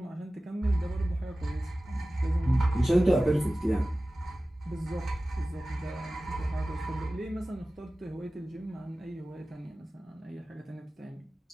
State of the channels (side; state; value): both; normal; correlation 0.96